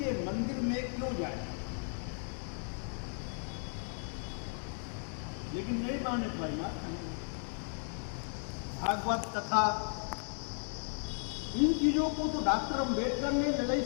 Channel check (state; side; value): silent; right; 54 dB below the other